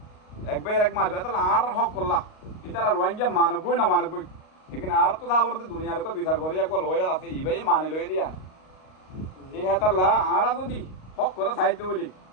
একবার এক মারবে তাহলে আর হক করলা ইতারা রোহিঙ্গা মানবই না মানবই এখানে আর তো যাবরতে দুনিয়ার উপর বিচার করে একবার লয়ার আছে ইবাই মানে লয়ে দিয়া এই হেতাল্লা আর যদি হক করে সাহিত্য বলি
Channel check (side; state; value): right; late; 38 ms